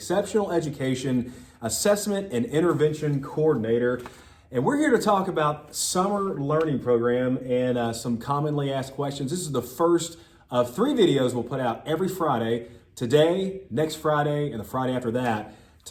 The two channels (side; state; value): both; identical; correlation 1.00